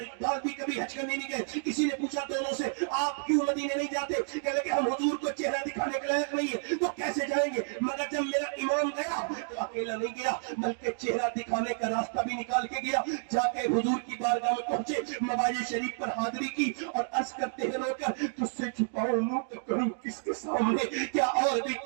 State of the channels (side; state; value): left; silent; digital silence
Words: اقبال بھی کبھی حج کرنے نہیں گئے. کسی نے پوچھا دونوں سے آپ کیوں مدینے نہیں جاتے؟ کہ لگے ہم حضور کو چہرہ دکھانے کے لائق نہیں ہے تو کیسے جائیں گے. مگر جب میرا امام گیا تو اکیلا نہیں گیا بلکہ چہرہ دکھانے کا راستہ بھی نکال کے گیا. جا کے حضور کی بارگاہ میں پہنچے، مواجہ شریف پر حاضری کی اور عرض کرتے ہیں رو کر تجھ سے چھپاؤں منہ تو کروں کس کے سامنے؟ کیا اور بھی